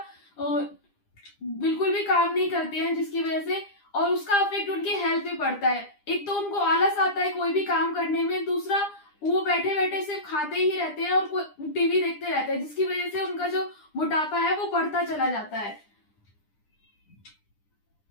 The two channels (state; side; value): late; right; 9.9 ms